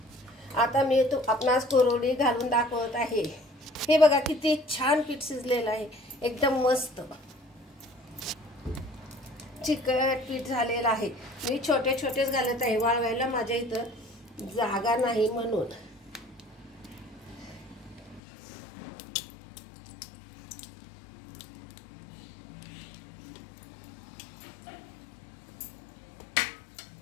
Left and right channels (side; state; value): right; drops out; at 18.2 s